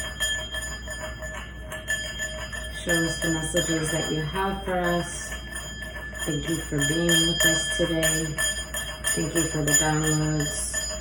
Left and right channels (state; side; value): identical; both; correlation 1.00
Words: Show us the messages that you have for us. Thank you for being with us today. Thank you for the downloads